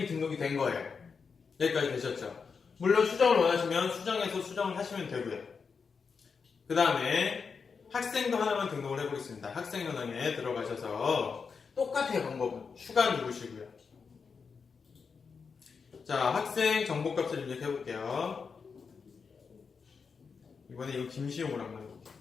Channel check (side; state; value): right; quieter; 5.5 dB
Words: 등록이 된 거예요. 여기까지 되셨죠? 물론 수정을 원하시면 수정해서 수정을 하시면 되고요. 그 다음에 학생도 하나만 등록을 해보겠습니다. 학생 현황에 들어가셔서 똑같아요. 방법은 추가 누르시고요. 자, 학생 정보값을 입력해볼게요. 이번에 이거 김시용으로 한번 해볼게요.